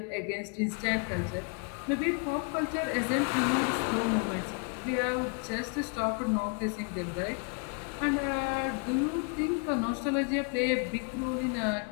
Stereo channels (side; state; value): right; quieter; 36.3 dB